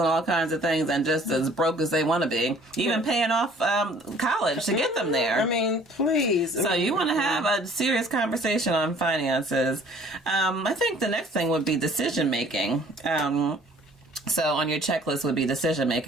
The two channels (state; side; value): normal; both; correlation 0.54